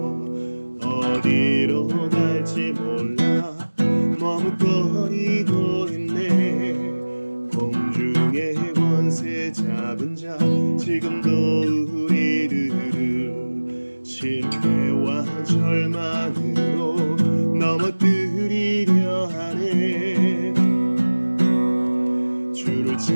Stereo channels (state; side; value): inverted; both; correlation -1.00